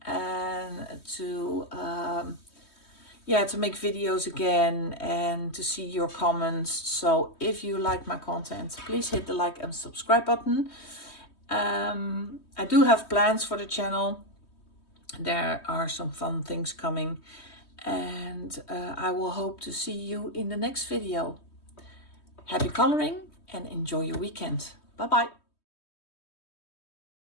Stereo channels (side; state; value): right; late; 3.2 ms